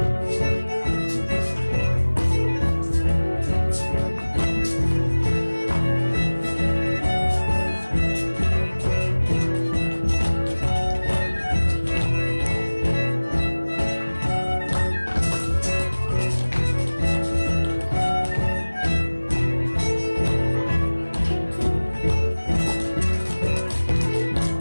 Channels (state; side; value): inverted; both; correlation -1.00